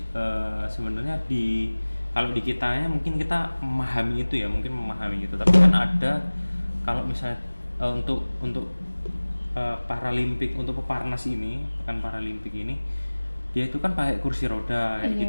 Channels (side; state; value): both; inverted; correlation -1.00